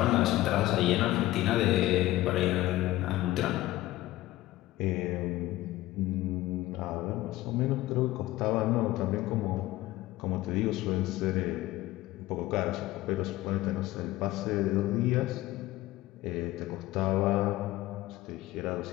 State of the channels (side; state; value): right; quieter; 16.6 dB